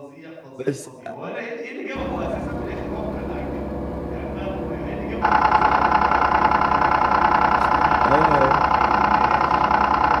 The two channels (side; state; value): both; identical; correlation 1.00